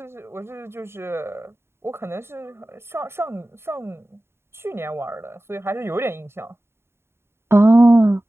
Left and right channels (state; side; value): late; left; 0.12 ms